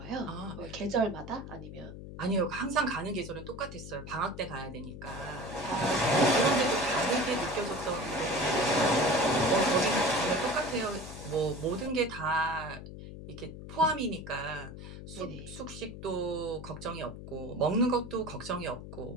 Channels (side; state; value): left; noise; hum, 12 dB below the sound